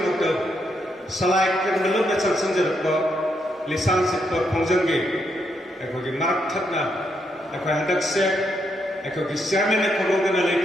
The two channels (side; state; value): both; normal; correlation 0.79